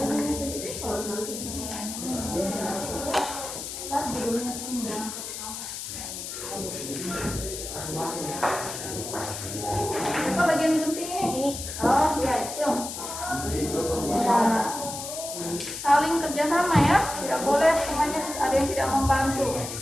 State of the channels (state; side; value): noise; left; hiss, 7 dB below the sound